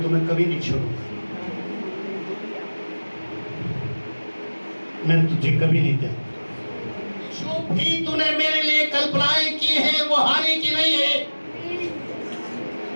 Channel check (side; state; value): both; inverted; correlation -1.00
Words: तुम्हें कभी नहीं छोड़ूंगा, मैं तुझे कभी नहीं दूंगा। जो भी तूने मेरे लिए कल्पनाएं की है वो हानि की नहीं है।